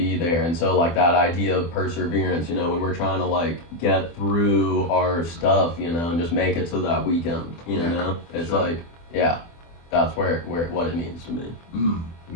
there. And so like that idea of perseverance, when we're trying to like get through our stuff, and just make it to that weekend, it's sure. Like, yeah, that's where what it means to me.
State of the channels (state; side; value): late; right; 24 ms